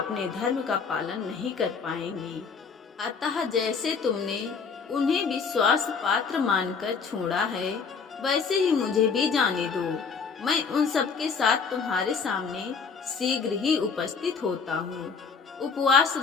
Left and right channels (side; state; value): right; quieter; 5.5 dB